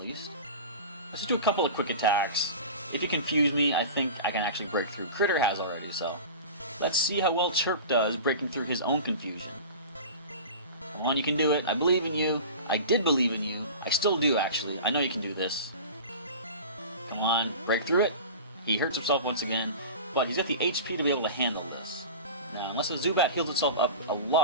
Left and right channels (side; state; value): both; inverted; correlation -0.33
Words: least. Let's just do a couple of Quick Attacks. If you confuse me, I think I can actually break through. Critter has already, so... Let's see how well Chirp does breaking through his own confusion. Come on, you can do it. I believe in you. I did believe in you. I still do, actually. I know you can do this. Come on, break through it. He hurts himself once again, but he's got the HP to be able to handle this. Now, unless the Zubat heals itself up a